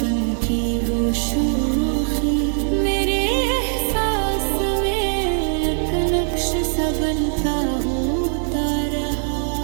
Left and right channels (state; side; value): silent; left; digital silence